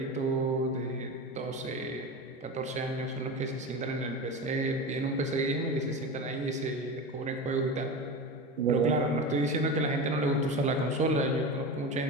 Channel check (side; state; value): both; normal; correlation 0.26